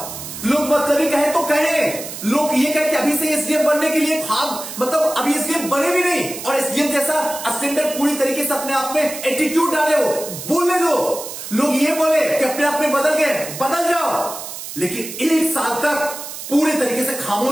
लोग मतलब कहे तो कहे, लोग ये कहे कि अभी से एसडीएम बनने के लिए मतलब अभी एसडीएम बने भी नहीं, और एसडीएम जैसा स्टैंडर्ड पूरी तरीके से अपने आप में एटीट्यूड डाले हो, बोलने दो। लोग ये बोले कि अपने आप में बदल गए, बदल जाओ, लेकिन 1 साल तक पूरे तरीके से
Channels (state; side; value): noise; right; hiss, 10 dB below the sound